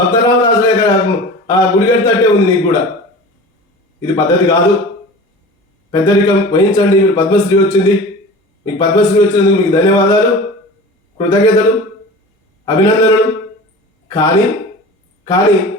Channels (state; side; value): normal; both; correlation 0.36